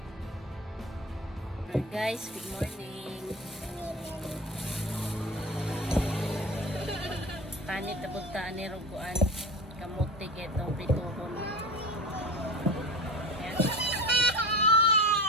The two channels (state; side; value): normal; both; correlation 0.31